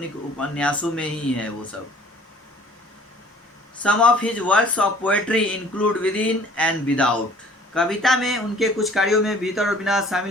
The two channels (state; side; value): normal; both; correlation 0.53